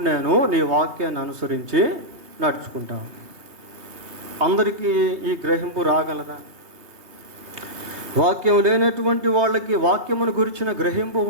నేను నీ వాక్యాన్ని అనుసరించి నడుచుకుంటాను. అందరికీ ఈ గ్రహింపు రాగలదా? వాక్యం లేనటువంటి వాళ్ళకి వాక్యమును గురించిన గ్రహింపు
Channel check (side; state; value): left; late; 2.8 ms